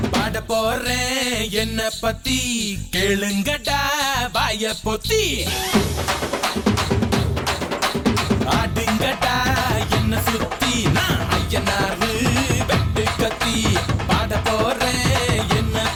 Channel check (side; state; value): both; identical; correlation 1.00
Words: பாட போறேன் என்ன பத்தி கேளுங்கடா வாய பொத்தி ஆடுங்கடா என்ன சுத்தி நான் ஐயனாரு வெட்டு கத்தி பாட போறேன் என்ன